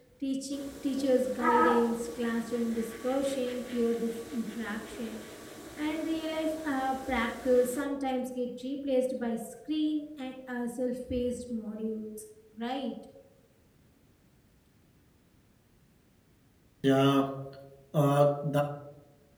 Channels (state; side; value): identical; both; correlation 1.00